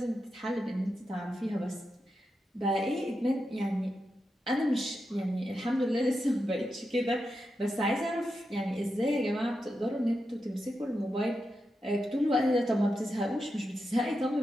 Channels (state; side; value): normal; both; correlation 0.88